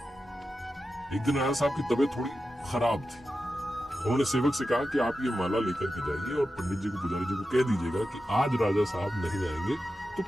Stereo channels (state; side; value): normal; both; correlation 0.91